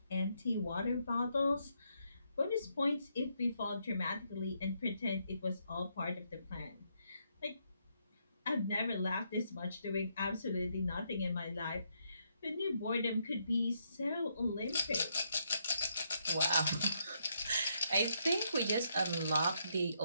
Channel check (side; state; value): both; inverted; correlation -0.76